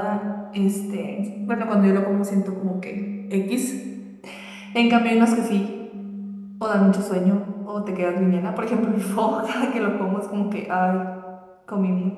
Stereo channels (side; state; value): both; identical; correlation 1.00